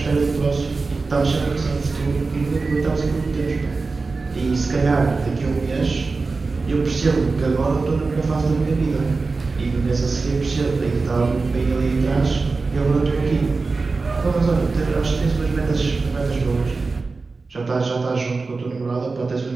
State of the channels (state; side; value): quieter; left; 4.0 dB